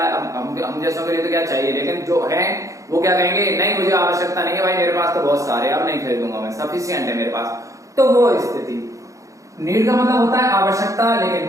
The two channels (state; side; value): late; left; 0.16 ms